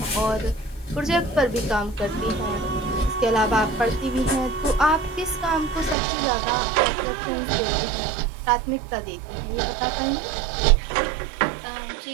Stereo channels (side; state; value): left; drops out; at 6.0 s